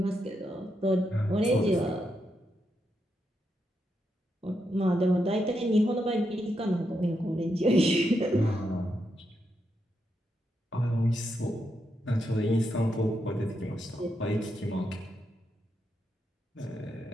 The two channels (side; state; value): both; normal; correlation 0.83